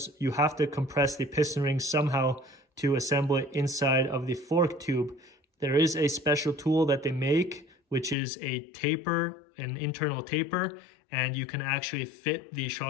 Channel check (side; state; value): right; drops out; at 8.2 s